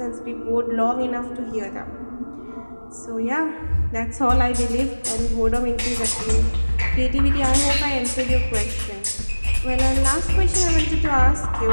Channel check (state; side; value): inverted; both; correlation -1.00